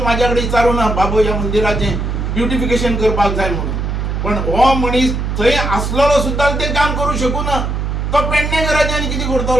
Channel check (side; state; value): right; noise; hum, 2 dB below the sound